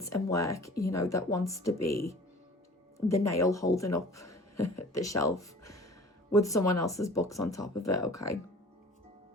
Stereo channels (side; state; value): both; normal; correlation 0.46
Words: and work, you know, that wants to be the nail holding up the shelf with someone else's books on top of it, okay?